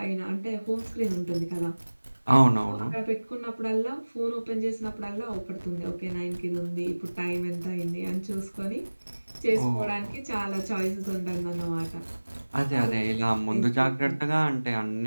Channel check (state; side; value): inverted; both; correlation -1.00